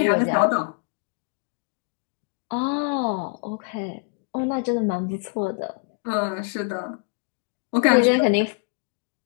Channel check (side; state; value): right; quieter; 38.6 dB